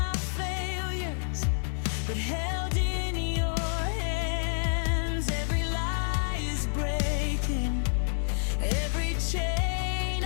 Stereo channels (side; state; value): right; silent; digital silence